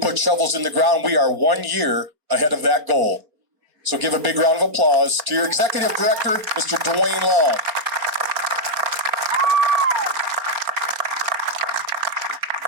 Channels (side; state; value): left; late; 4.3 ms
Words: shovels in the ground, we are 1 year ahead of that goal. So give a big round of applause to your Executive Director, Mr. Dwayne Long.